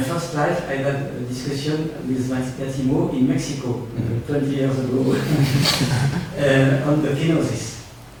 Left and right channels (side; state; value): both; identical; correlation 1.00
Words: first life, I had a discussion with Vattimo in Mexico 20 years ago on the kenosis.